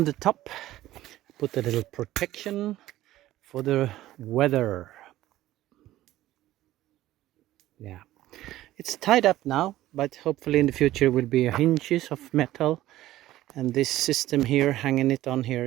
the top, put a little protection for the weather. Yeah, it's tied up now, but hopefully in the future will be hinges of metal, and this system here, hanging it on here,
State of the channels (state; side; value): quieter; left; 15.1 dB